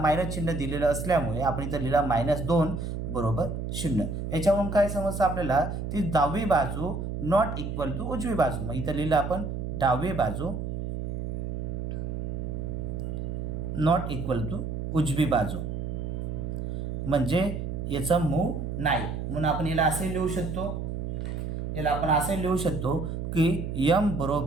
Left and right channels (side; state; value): right; noise; hum, 4 dB below the sound